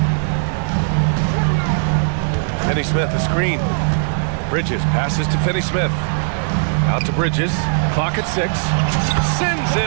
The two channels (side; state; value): left; silent; 58 dB below the other